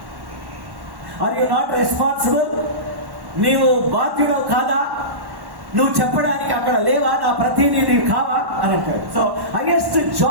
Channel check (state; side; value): late; left; 1.1 ms